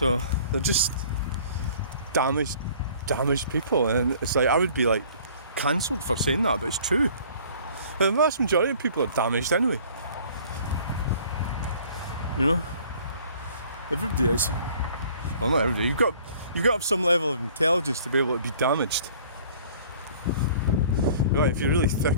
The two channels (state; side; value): inverted; both; correlation -0.52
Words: they're just damaged people, and it's like, I would be like cancelled for saying that, but it's true. The vast majority of people are damaged anyway, you know. Everybody is. Well, not everybody. You've got to have some level of intelligence to be able to be damaged. Right, if you're really